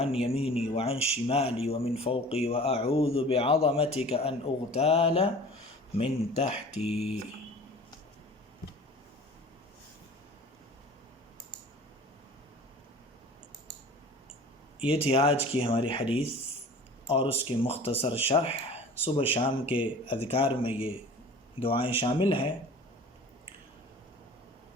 یمینی وعن شمالی ومن فوقی واعوذ بعظمتک ان اغتال من تحتی۔ یہ تھی آج کی ہماری حدیث اور اس کی مختصر شرح۔ صبح شام کے اذکار میں یہ دعائیں شامل ہیں،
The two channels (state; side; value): normal; both; correlation 0.43